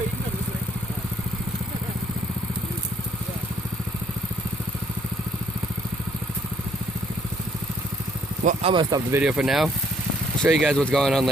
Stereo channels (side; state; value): both; normal; correlation 0.66